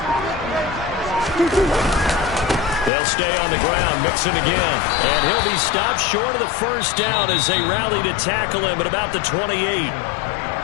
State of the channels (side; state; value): right; drops out; at 2.9 s